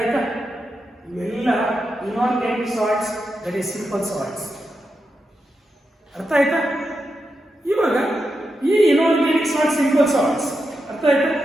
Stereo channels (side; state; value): both; normal; correlation 0.87